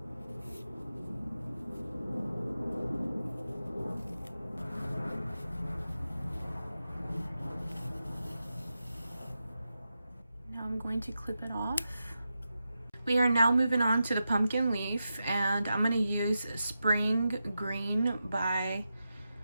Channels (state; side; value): inverted; both; correlation -0.90